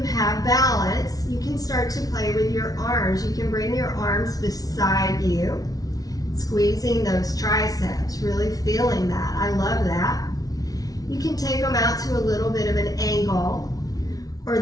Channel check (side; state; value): right; late; 0.18 ms